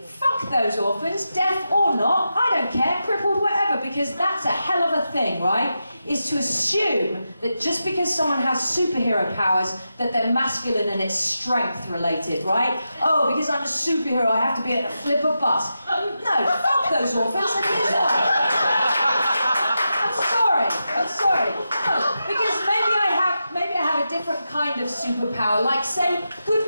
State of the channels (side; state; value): both; inverted; correlation -0.89